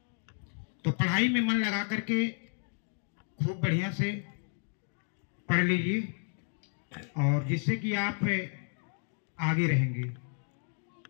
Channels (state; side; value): silent; right; 56 dB below the other